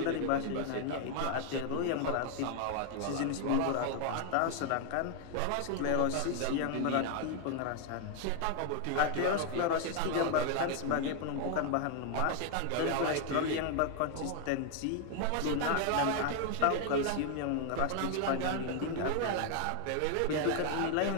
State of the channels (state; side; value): different; both; correlation 0.00